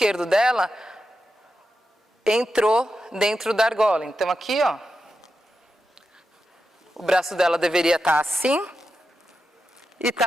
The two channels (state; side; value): normal; both; correlation 0.89